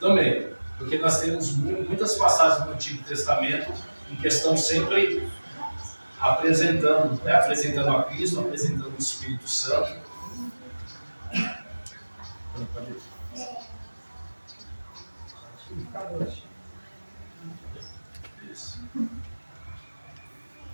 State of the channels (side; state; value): both; inverted; correlation -1.00